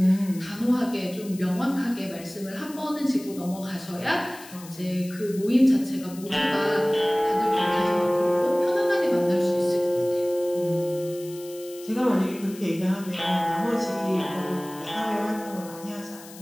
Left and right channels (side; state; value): left; noise; hiss, 18 dB below the sound